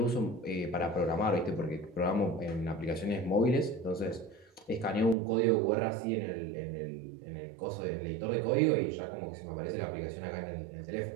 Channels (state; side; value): drops out; left; at 5.2 s